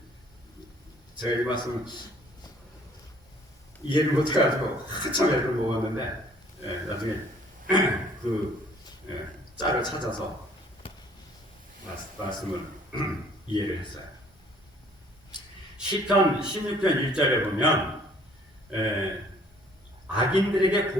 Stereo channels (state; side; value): normal; both; correlation 0.58